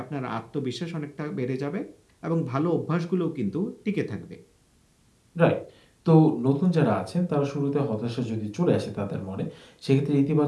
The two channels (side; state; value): both; identical; correlation 1.00